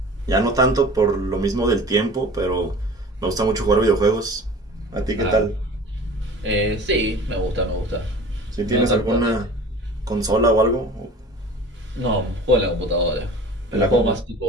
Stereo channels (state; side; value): normal; both; correlation 0.41